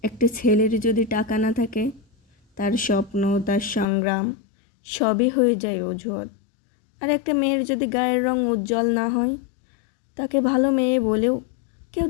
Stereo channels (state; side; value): drops out; right; at 3.9 s